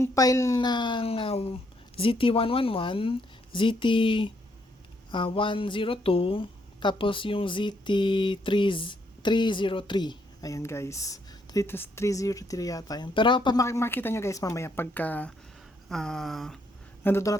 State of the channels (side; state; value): both; normal; correlation 0.73